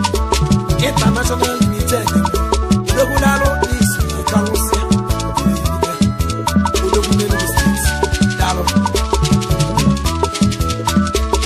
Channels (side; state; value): both; identical; correlation 1.00